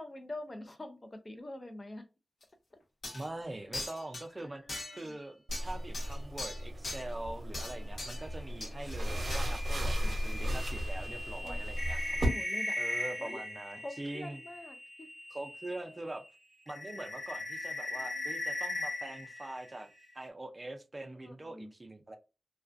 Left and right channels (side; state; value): both; normal; correlation 0.93